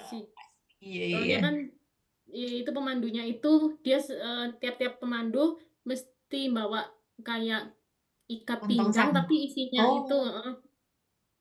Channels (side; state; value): both; identical; correlation 1.00